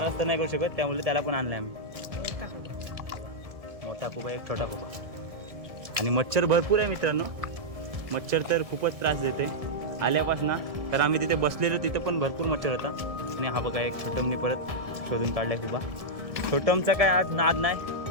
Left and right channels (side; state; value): left; late; 1.7 ms